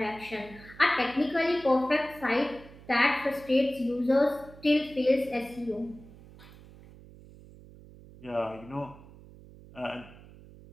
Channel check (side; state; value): right; noise; hum, 20 dB below the sound